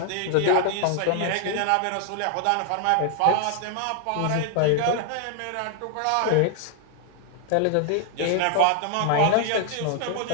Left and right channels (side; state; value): both; different; correlation 0.00